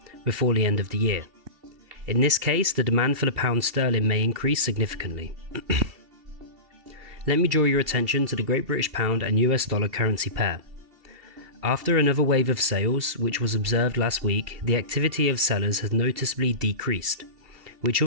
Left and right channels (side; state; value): left; late; 2.7 ms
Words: before the end of the year. In this case, the demand for the pound sterling may increase significantly. Let me draw your attention to the Great British Pound and US dollar currency pair. After another wave of sales, which was observed last week, the activity of sellers has noticeably decreased, which